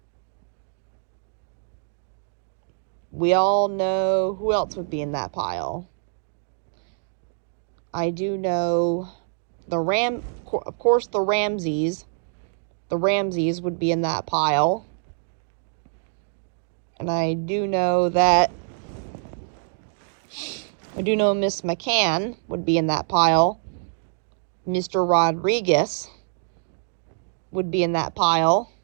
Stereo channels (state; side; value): silent; left; digital silence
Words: We all know who else would be in that pile. I do know of course the Ramseys. The Ramseys would be in that pile. And I do know Miss McCann would be in that pile. Mr. Rodriguez would be in that pile.